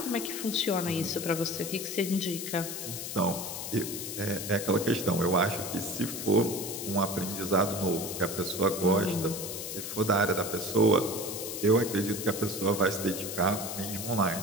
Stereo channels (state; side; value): noise; left; hiss, 6 dB below the sound